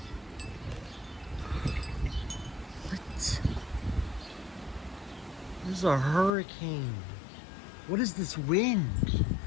What? This is a hurricane. What is this wind?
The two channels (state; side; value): drops out; right; at 6.4 s